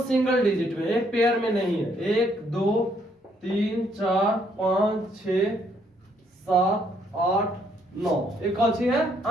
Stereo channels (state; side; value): normal; both; correlation 0.70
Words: डिजिट में, एक पेयर में नहीं है। 1, 2, 3, 4, 5, 6, 7, 8, 9, एक कौन सी है?